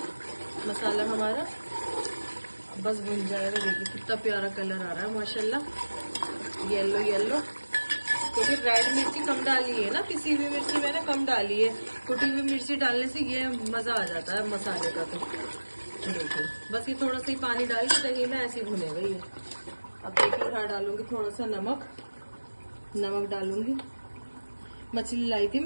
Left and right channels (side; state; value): both; inverted; correlation -1.00